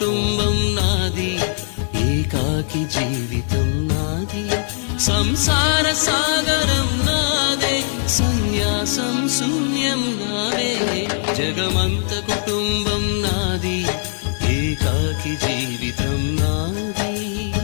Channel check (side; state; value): right; silent; digital silence